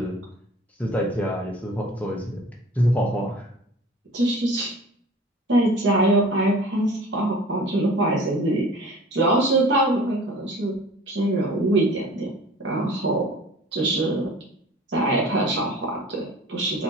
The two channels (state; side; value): normal; both; correlation 0.44